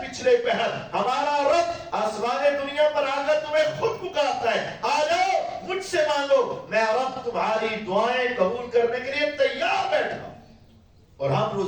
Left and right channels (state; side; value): identical; both; correlation 1.00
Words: پچھلے پہر ہمارا رب آسمان دنیا پر آ کر تمہیں خود پکارتا ہے، آ جاؤ مجھ سے مانگو، میں رب تمہاری دعائیں قبول کرنے کے لیے تیار بیٹھا ہوں۔ اور ہم